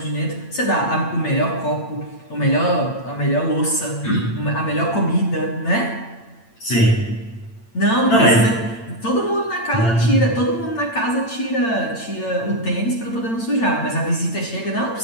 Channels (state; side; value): late; right; 8.8 ms